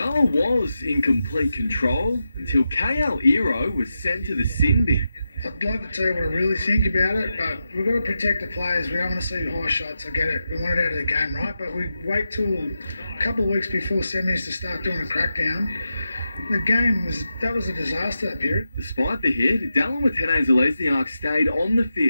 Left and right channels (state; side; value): inverted; both; correlation -0.89